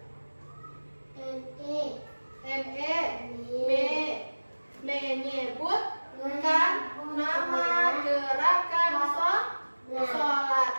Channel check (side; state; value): both; inverted; correlation -1.00